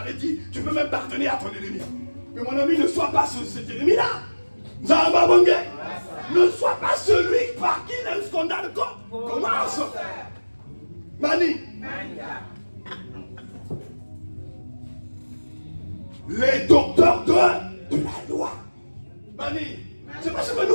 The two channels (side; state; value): both; inverted; correlation -1.00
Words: dit, tu peux même pardonner à ton ennemi. Mais mon ami, ne sois pas cet ennemi-là. Zamba Bangé. Ne sois pas celui par qui le scandale commence. Mani. Les docteurs de la loi. Mani. C'est pas ce que